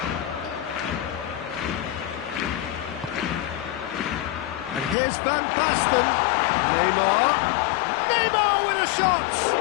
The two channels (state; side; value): drops out; right; at 5.0 s